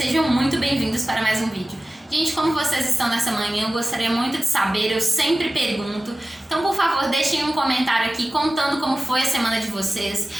muito bem-vindos para mais um vídeo. Gente, como vocês estão nessa manhã, eu gostaria muito de saber, eu sempre pergunto. Então, por favor, deixem um comentário aqui contando como foi a semana de vocês.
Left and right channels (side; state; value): both; normal; correlation 0.96